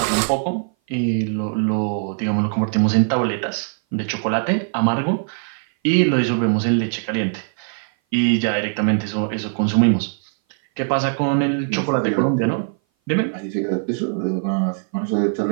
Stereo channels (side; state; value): left; silent; 58 dB below the other